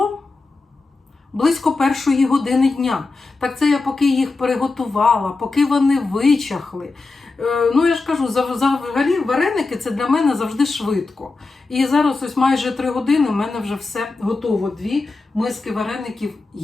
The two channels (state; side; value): quieter; right; 3.7 dB